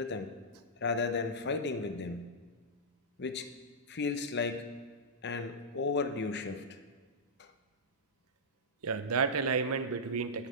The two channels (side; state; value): both; normal; correlation -0.11